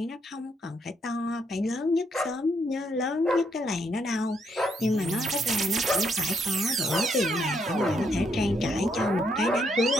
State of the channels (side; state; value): both; normal; correlation 0.74